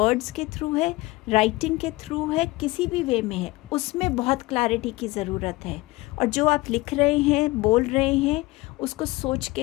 के थ्रू है, राइटिंग के थ्रू है, किसी भी वे में है, उसमें बहुत क्लैरिटी की ज़रूरत है। और जो आप लिख रहे हैं, बोल रहे हैं, उसको सोच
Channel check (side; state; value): right; quieter; 20.8 dB